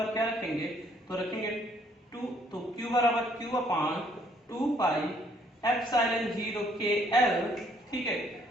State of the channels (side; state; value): both; normal; correlation 0.65